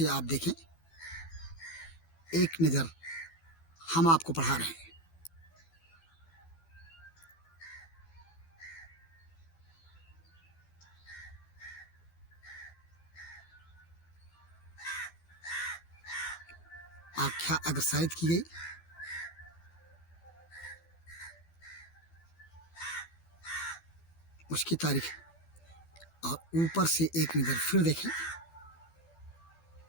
आप देखें। एक नज़र हम आपको पढ़ा रहे हैं। आख्या अग्रसारित की गई। उसकी तारीख और ऊपर से एक नज़र फिर देखें।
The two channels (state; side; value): late; right; 12 ms